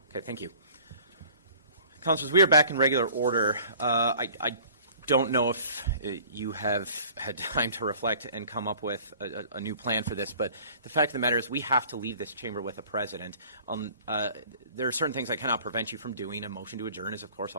Okay, thank you. Councilors, we are back in regular order. I don't know if you have had time to reflect and come up with a new plan for this, but the fact of the matter is we have to leave this chamber with a president. There are certain things I cannot prevent you from doing. A motion to adjourn is, of course,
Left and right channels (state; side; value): inverted; both; correlation -0.49